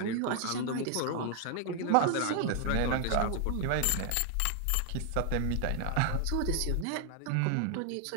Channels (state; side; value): different; both; correlation 0.00